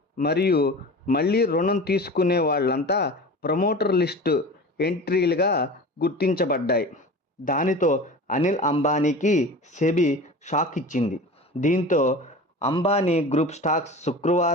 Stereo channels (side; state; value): both; normal; correlation 0.35